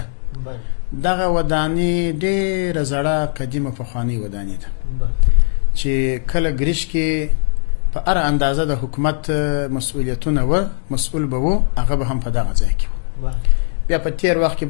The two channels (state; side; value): silent; right; digital silence